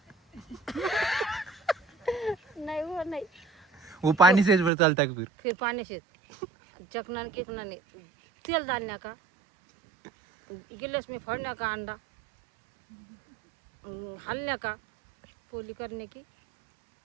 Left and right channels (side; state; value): left; drops out; at 4.7 s